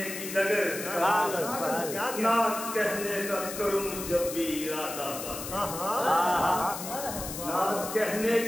کی ڈگر نعت کہنے کا کروں جب بھی ارادہ نعت کہنے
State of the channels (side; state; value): left; noise; hiss, 8 dB below the sound